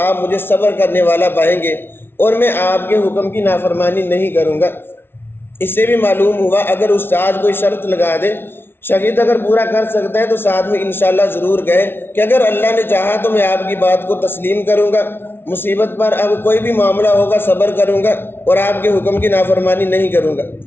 آپ مجھے صبر کرنے والا پائیں گے اور میں آپ کے حکم کی نافرمانی نہیں کروں گا۔ اس سے بھی معلوم ہوا اگر استاد کوئی شرط لگا دے، شاگرد اگر پورا کر سکتا ہے تو ساتھ میں انشاءاللہ ضرور کہے کہ اگر اللہ نے چاہا تو میں آپ کی بات کو تسلیم کروں گا، مصیبت پر اب کوئی بھی معاملہ ہوگا صبر کروں گا اور آپ کے حکم کی نافرمانی نہیں کروں گا۔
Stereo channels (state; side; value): late; right; 0.11 ms